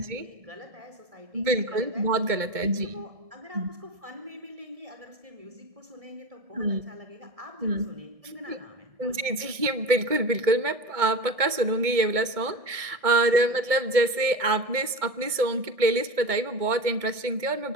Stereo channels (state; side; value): late; left; 1.6 ms